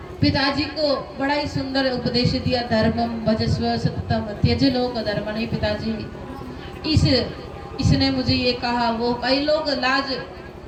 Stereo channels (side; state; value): both; identical; correlation 1.00